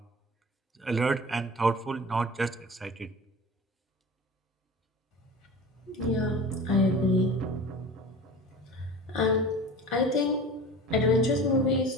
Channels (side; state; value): both; normal; correlation 0.36